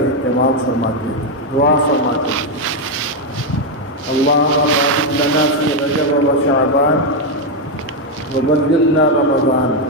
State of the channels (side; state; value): both; normal; correlation 0.04